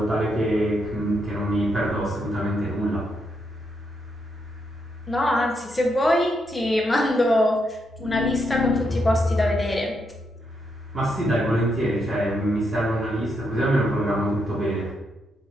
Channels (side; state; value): both; normal; correlation 0.80